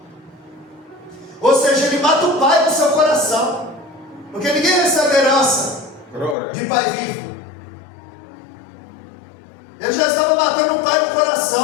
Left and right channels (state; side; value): drops out; right; at 6.4 s